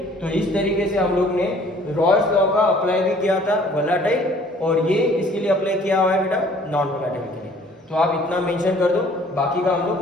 तो इस तरीके से हम लोग ने रॉल्स लॉ का अप्लाई भी किया था वोलेटाइल, और ये इसके लिए अप्लाई किया हुआ है बेटा नॉन वोलेटाइल के लिए। तो आप इतना मेंशन कर दो, बाकी का हम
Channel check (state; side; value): normal; both; correlation 0.55